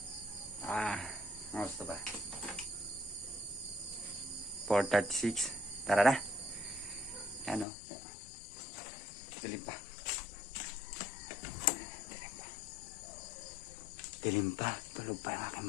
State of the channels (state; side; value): drops out; right; at 7.7 s